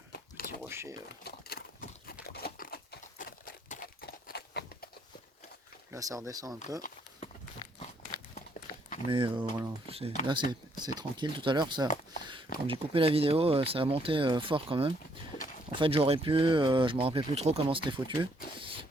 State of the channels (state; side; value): normal; both; correlation 0.69